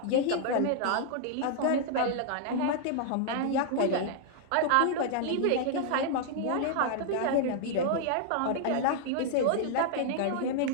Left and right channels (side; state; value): both; different; correlation -0.01